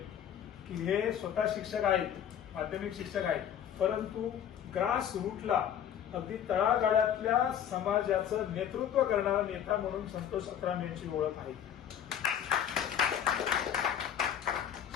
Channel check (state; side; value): quieter; right; 9.4 dB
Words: की हे स्वतः शिक्षक आहेत, माध्यमिक शिक्षक आहेत, परंतु ग्रास रूटला अगदी तळागाळातल्या समाजाचं नेतृत्व करणारा नेता म्हणून संतोष अत्राम यांची ओळख आहे.